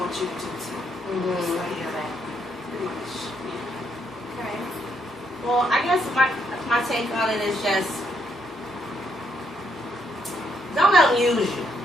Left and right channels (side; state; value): both; normal; correlation 0.74